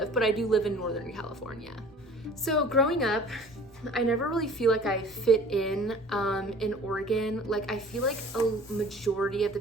but I do live in Northern California. So growing up, I never really feel like I fit in Oregon. Like, I feel like a majority of the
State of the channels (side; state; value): both; normal; correlation 0.47